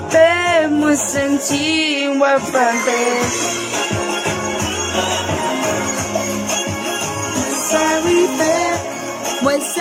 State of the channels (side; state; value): both; identical; correlation 1.00